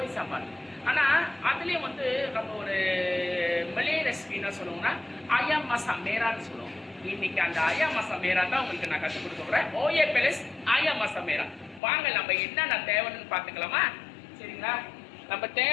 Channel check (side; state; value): right; drops out; at 11.8 s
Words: சாப்பாடு. ஆனால் அதுலேயும் வந்து நம்ம ஒரு மலே ரெசிபி என்ன சொல்லுவோம்னா ஆயா மசா மேரான்னு சொல்லுவோம். இன்னைக்கு அந்த ஆயா மசா மேரா தான் உங்களுக்கு நான் கற்றுக் கொடுக்க போகிறேன். ஓஏ பிளஸ் ஆயா மசா மேரா. வாங்க நம்ம என்னென்ன தேவைன்னு பார்த்துக்கலாமா? சரிங்களா? நம்ம